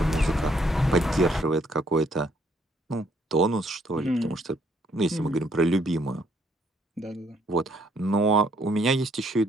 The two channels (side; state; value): both; normal; correlation 0.67